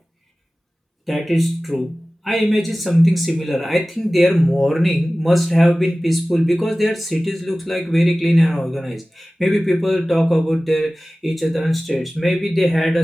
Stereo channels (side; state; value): both; normal; correlation 0.97